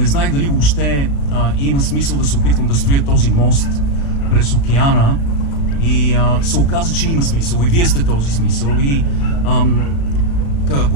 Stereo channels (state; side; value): late; right; 35 ms